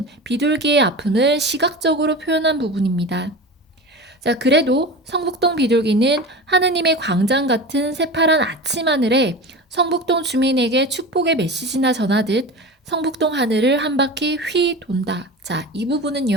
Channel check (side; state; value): both; normal; correlation 0.30